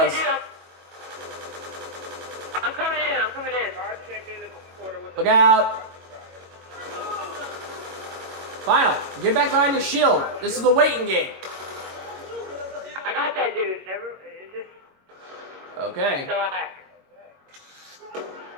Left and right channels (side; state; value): left; late; 22 ms